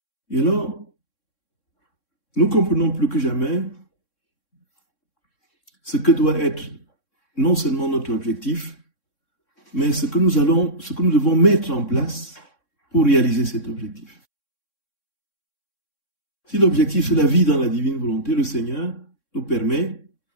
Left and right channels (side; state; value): right; late; 3.6 ms